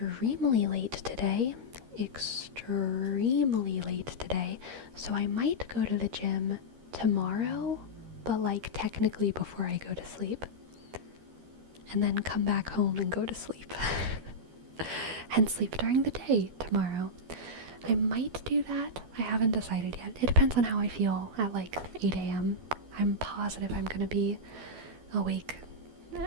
late today, so I might go to the gym tomorrow, but like technically before I go to sleep, and then come back home and go to sleep, and sleep during the day tomorrow. I might do that. I haven't decided yet. It depends on how I feel at like 8 a.m. I'm positive I'm gonna be awake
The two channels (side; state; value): left; late; 13 ms